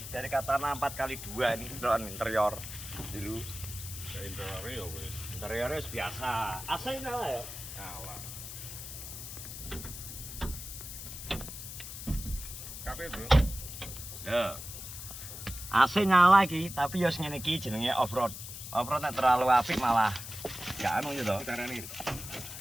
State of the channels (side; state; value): left; noise; hiss, 10 dB below the sound